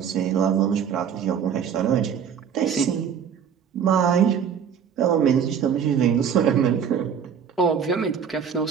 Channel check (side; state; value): left; quieter; 7.6 dB